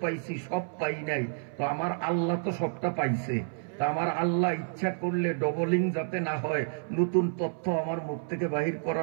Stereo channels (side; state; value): left; silent; 58 dB below the other